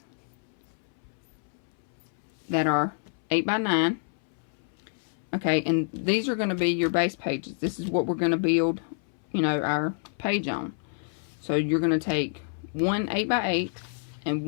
that are 8 by 9. Okay, and these are going to be your base pages. This is what we're going to build, our page on. So you're going to take one 8 by 8 and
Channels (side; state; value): right; silent; 59 dB below the other